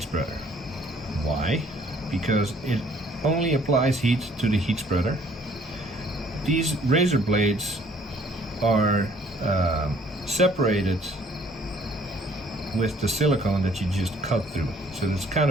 spreader. Why? Because it only applies heat to the heat spreader. These razor blades are separated with the silicone that you just cut through. So it's kind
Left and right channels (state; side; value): normal; both; correlation 0.59